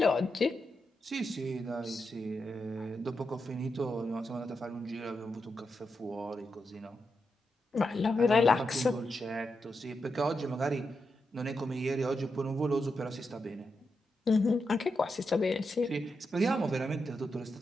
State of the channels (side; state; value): both; normal; correlation 0.86